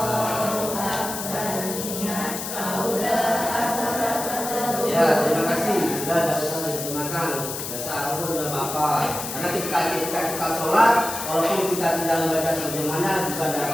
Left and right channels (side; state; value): left; noise; hiss, 6 dB below the sound